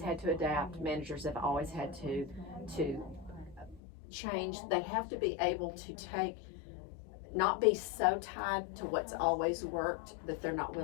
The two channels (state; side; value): drops out; right; at 3.8 s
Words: to adapt. Managers have always had to change. They have to be able to not be so tied to what's always worked that they're not